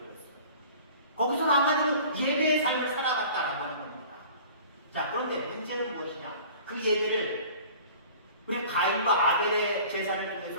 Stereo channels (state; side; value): inverted; both; correlation -0.45